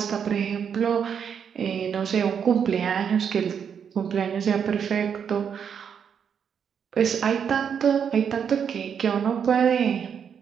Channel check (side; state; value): left; quieter; 7.5 dB